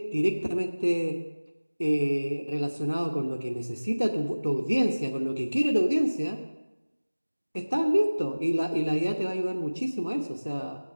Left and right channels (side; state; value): both; inverted; correlation -1.00